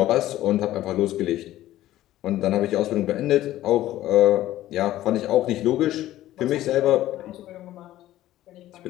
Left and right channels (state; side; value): quieter; right; 14.4 dB